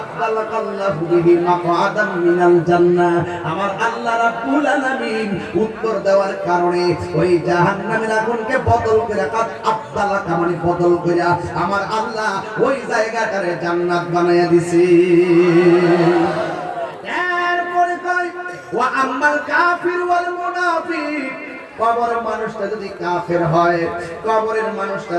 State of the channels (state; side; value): identical; both; correlation 1.00